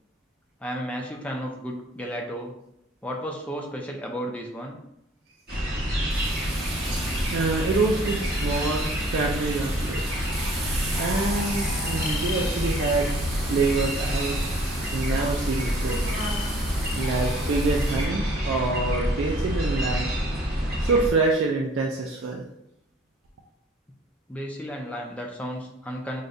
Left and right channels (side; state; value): both; normal; correlation 0.55